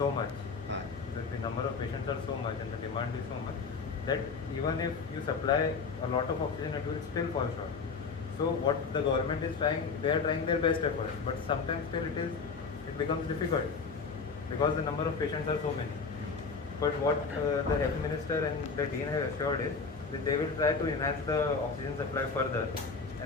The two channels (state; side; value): quieter; right; 4.9 dB